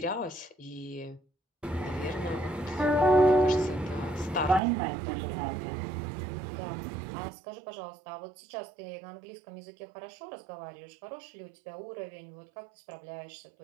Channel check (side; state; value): left; drops out; at 4.6 s